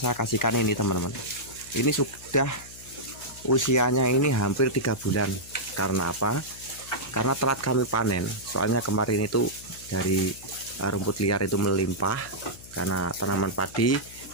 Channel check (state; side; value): noise; left; hum, 19 dB below the sound